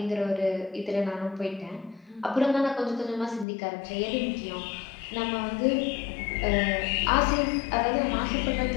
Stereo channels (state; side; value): drops out; right; at 3.5 s